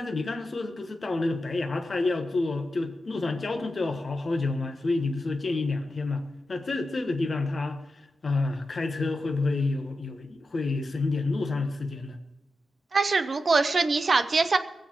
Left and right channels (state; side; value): normal; both; correlation 0.89